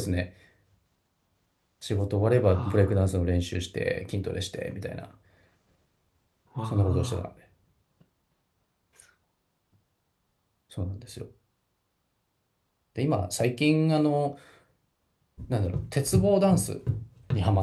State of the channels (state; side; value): identical; both; correlation 1.00